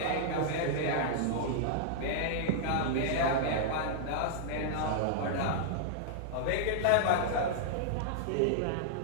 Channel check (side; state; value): both; different; correlation -0.01